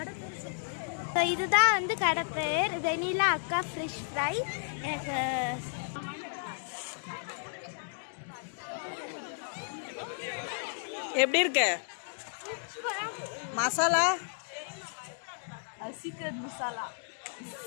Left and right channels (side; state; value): right; silent; digital silence